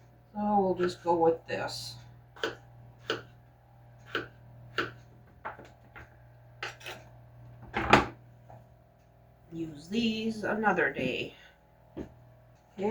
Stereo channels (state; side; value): identical; both; correlation 1.00